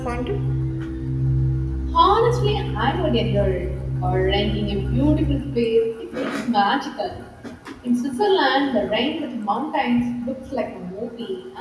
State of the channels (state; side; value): identical; both; correlation 1.00